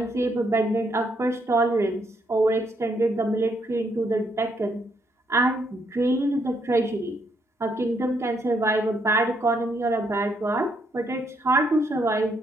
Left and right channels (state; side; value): normal; both; correlation 0.74